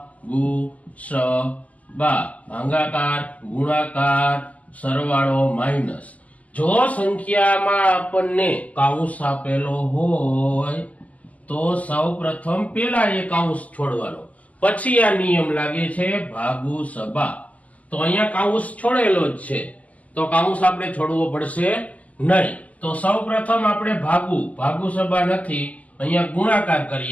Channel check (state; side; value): late; right; 0.073 ms